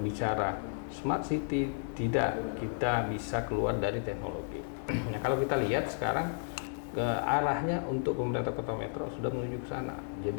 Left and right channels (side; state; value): right; silent; digital silence